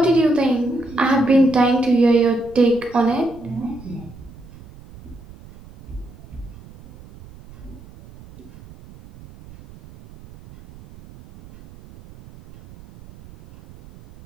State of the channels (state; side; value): noise; right; rumble, 20 dB below the sound